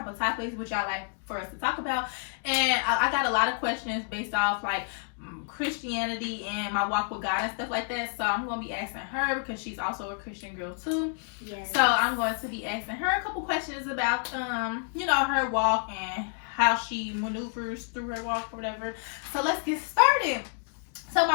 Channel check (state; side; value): silent; right; 59 dB below the other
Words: of topics would y'all like for us to talk about, and I got a lot of questions based off, like, Christianity and my walk with God and stuff like that. So I'm going to be asking her because she's also a Christian girl too. Yes. So I'm going to be asking her a couple questions about, her walk and how she maneuvers through her walk or whatever. So let's get started. So